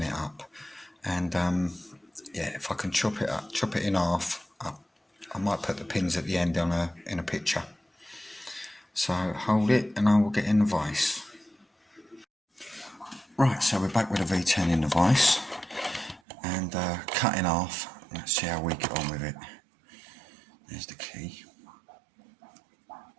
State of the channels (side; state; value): left; drops out; at 16.2 s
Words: it up, and yeah, if I can chop it in half, I might put the pins at the end in a picture. So hold it and I will get in the vise. Right, so we're back with a V10 in the vise and cut in half. Let's see how we get on with it. There's the key.